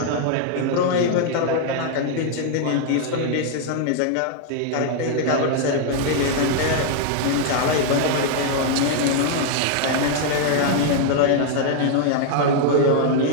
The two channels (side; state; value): both; different; correlation 0.00